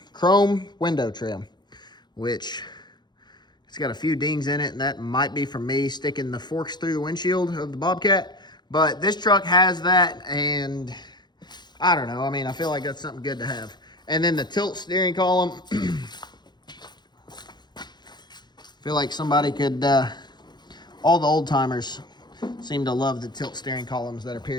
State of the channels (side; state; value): right; late; 0.21 ms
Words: chrome window trim, which it's got a few dings in it, and that might be from me sticking the forks through the windshield of the Bobcat. But this truck has that, and I don't know. I mean, I feel like that's something good to have. And then the tilt steering column. Feel like somebody could, all the old timers seem to love the tilt steering columns that are